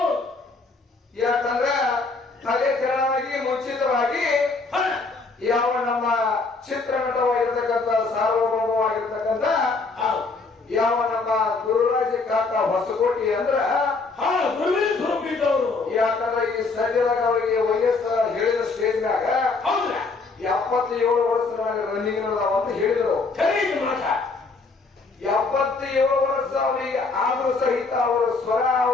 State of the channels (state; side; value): quieter; right; 4.0 dB